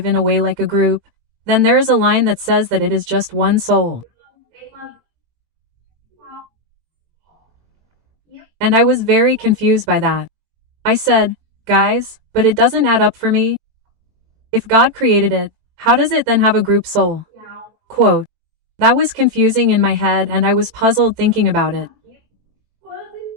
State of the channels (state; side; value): late; left; 20 ms